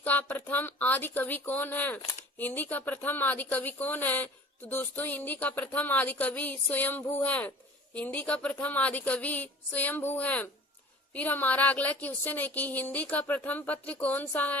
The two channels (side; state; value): both; normal; correlation 0.44